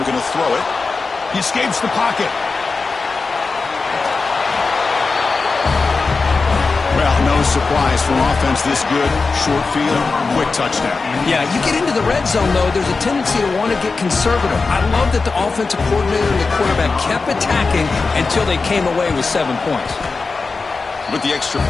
going to throw it. He escapes the pocket. Well, no surprise from offense this good. Short field, quick touchdown. Yeah, you get into the red zone, though, there's a tendency to want to get conservative. I love that the offensive coordinator and the quarterback kept attacking until they came away with 7 points. With the extra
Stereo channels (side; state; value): right; quieter; 4.2 dB